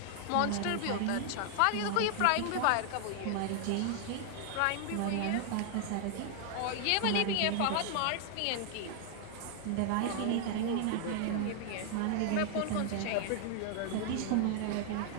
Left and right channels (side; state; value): both; different; correlation 0.00